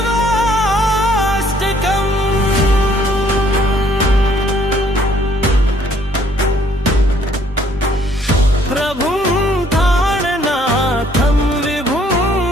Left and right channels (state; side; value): normal; both; correlation 0.63